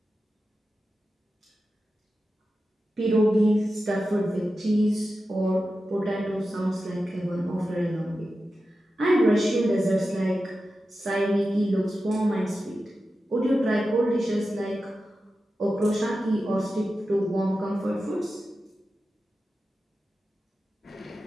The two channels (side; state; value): both; normal; correlation 0.92